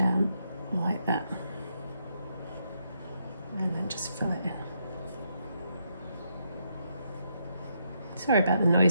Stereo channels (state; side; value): inverted; both; correlation -0.78